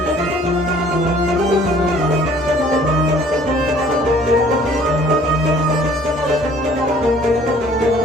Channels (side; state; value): both; normal; correlation 0.55